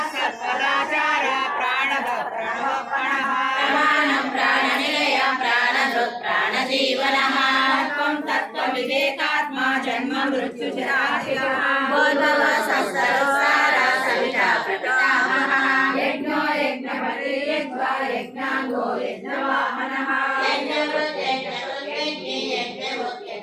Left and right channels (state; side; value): identical; both; correlation 1.00